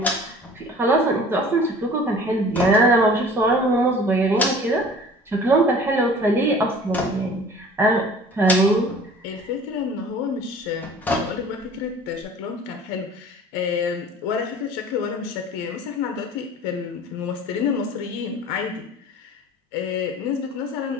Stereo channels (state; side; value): normal; both; correlation 0.46